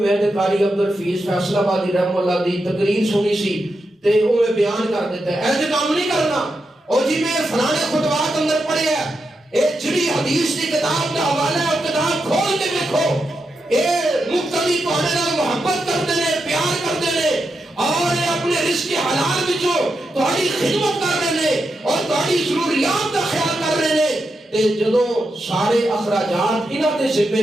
تے قاری عبدالفیض فیصل آبادی رحم اللہ دی تقریر سنی سی تے وہ میں بیان کر دیتا ہے، ایسے کام نہیں کرنا۔ اور جی میں فلانے خطبات اندر پڑھے ہے اے جڑی حدیث کی کتاب کا حوالہ ہے کتاب کھول کے دیکھو اے مقتدی تواڈے نال محبت کرتے ہیں پیار کرتے ہیں اور اپنے رزق حلال وچوں تہاڈی خدمت کر رہے ہیں اور تہاڈی ضروریات کا خیال کر رہے ہیں تے جدوں سارے اخراجات انہاں دے ذمے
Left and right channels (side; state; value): both; normal; correlation 0.86